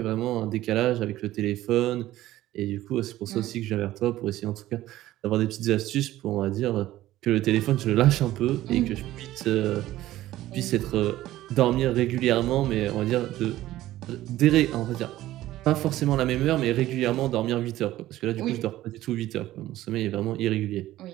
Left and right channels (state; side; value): quieter; left; 15.0 dB